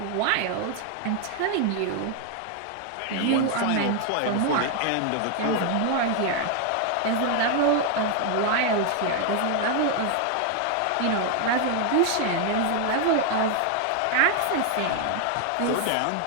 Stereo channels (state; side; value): different; both; correlation 0.00